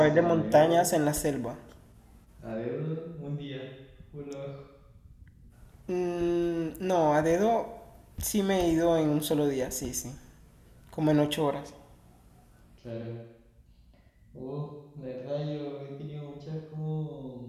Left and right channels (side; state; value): both; identical; correlation 1.00